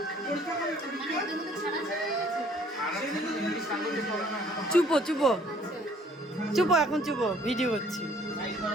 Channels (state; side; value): normal; both; correlation 0.59